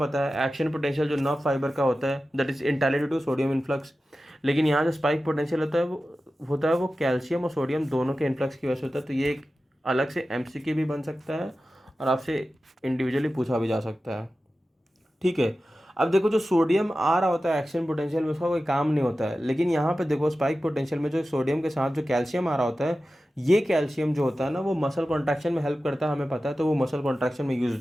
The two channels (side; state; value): both; normal; correlation 0.94